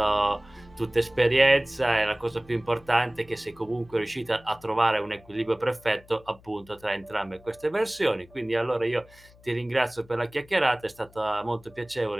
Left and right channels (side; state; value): left; noise; hum, 25 dB below the sound